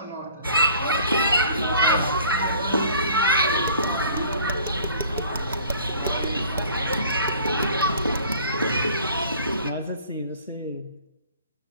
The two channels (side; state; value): both; inverted; correlation -0.50